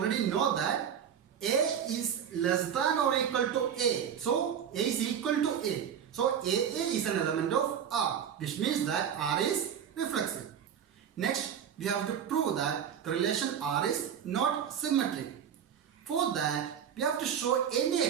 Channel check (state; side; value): quieter; left; 8.4 dB